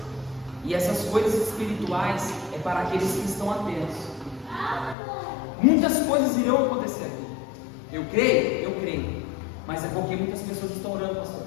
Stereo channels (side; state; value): right; drops out; at 5.0 s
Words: e essas coisas espirituais é para aqueles que estão atentos. Muitas coisas irão acontecer aqui. Eu creio, mas é porque muitas pessoas estão orando, pastor.